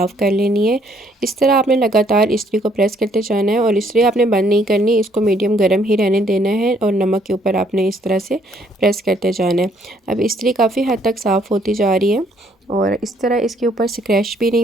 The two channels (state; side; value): normal; both; correlation 0.66